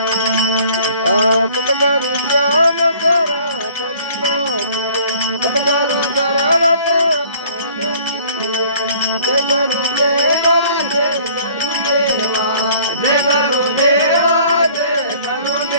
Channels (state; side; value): inverted; both; correlation -0.54